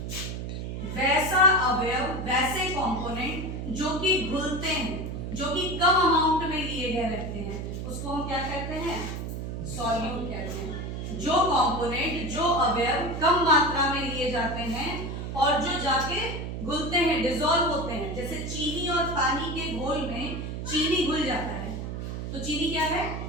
वैसा अवयव, वैसे कंपोनेंट जो कि घुलते हैं, जो कि कम अमाउंट में लिए गए रहते हैं, उसको हम क्या कहते हैं? सॉल्यूट कहते हैं। जो कंपोनेंट, जो अवयव कम मात्रा में लिए जाते हैं और जो जाके घुलते हैं, डिसॉल्व होते हैं। जैसे चीनी और पानी के घोल में चीनी घुल जाता है, तो चीनी क्या है?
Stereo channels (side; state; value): right; noise; hum, 5 dB below the sound